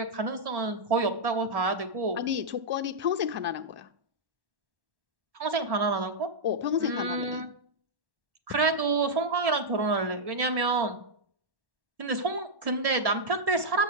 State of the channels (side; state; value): left; late; 1.1 ms